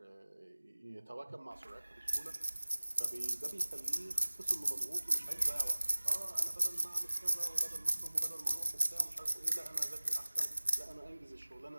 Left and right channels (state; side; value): inverted; both; correlation -1.00